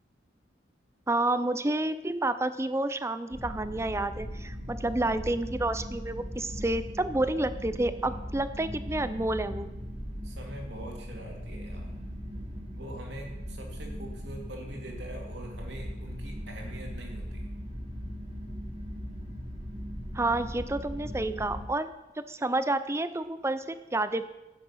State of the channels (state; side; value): normal; both; correlation 0.71